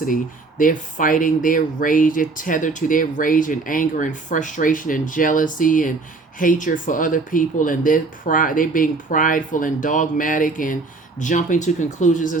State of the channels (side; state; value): left; quieter; 3.8 dB